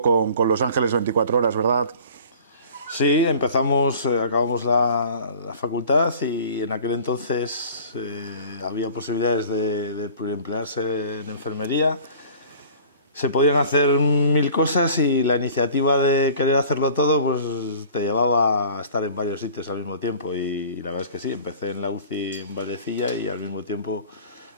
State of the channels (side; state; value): both; inverted; correlation -0.46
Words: con Los Ángeles 24 horas, ¿verdad? Sí, acabamos la facultad y en aquel entonces había posibilidades de pluriemplearse en enfermería. Se podían hacer mil cosas y la iniciativa de querer hacerlo todo pues te llevaba a estar en varios sitios al mismo tiempo y la verdad es que sí, empecé en la UCI en Vallecilla y al mismo tiempo